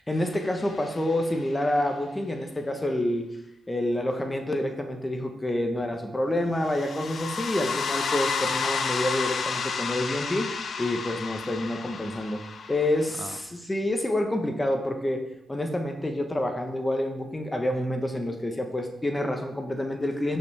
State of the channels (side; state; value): both; normal; correlation 0.88